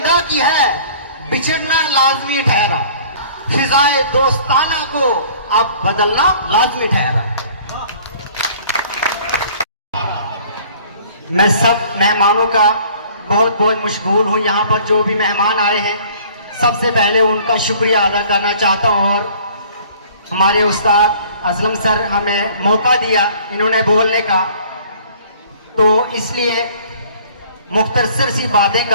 की है, बिछड़ना लाजमी ठहरा, फिजाए दोस्ताना को अब बदलना लाजमी ठहरा। मैं सब मेहमानों का बहुत बहुत मशगूल हूँ। यहाँ पर जो भी मेहमान आए हैं सबसे पहले उनका शुक्रिया अदा करना चाहता हूँ, और हमारे उस्ताद असलम सर हमें मौका दिया इन्होंने बोलने का, तो इसलिए मुख्तसर सी बातें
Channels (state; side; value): inverted; both; correlation -0.52